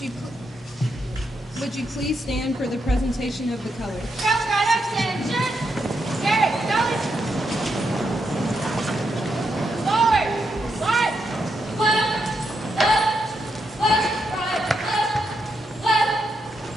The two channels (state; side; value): normal; both; correlation 0.81